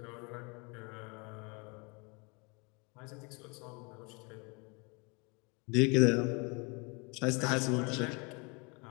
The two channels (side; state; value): right; quieter; 30.9 dB